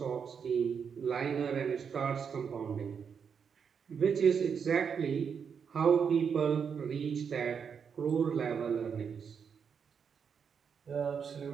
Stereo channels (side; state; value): left; quieter; 6.8 dB